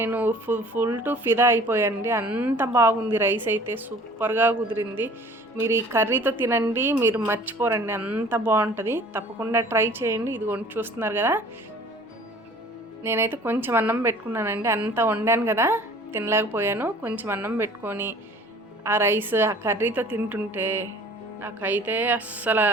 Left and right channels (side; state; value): both; normal; correlation 0.49